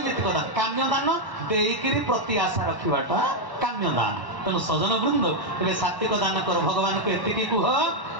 दान। काम्य दान देईकरी प्रत्याशा रखिबाटा काम्य दान। तेणु सजन वृंद तेरे सात्विक दान कर भगवान को एतिकी कुह।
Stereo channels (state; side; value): late; right; 1.1 ms